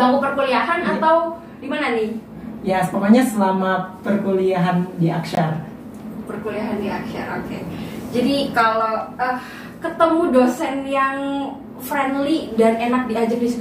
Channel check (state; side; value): identical; both; correlation 1.00